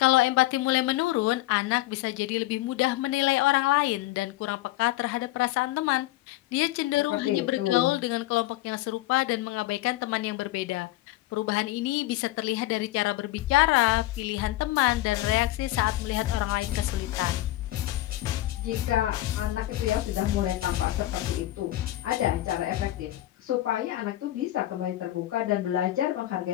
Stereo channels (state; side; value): quieter; right; 16.2 dB